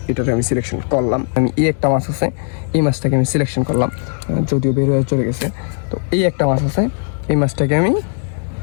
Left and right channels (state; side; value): silent; right; digital silence